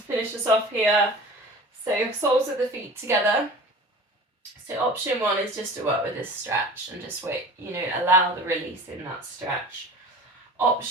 finish us off here. So soles of the feet together. So option 1 is just to work with this stretch and just wait, allow the release in that stretch.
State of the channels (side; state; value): both; normal; correlation 0.39